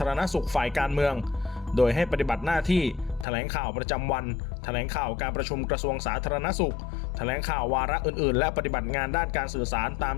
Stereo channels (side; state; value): right; drops out; at 3.2 s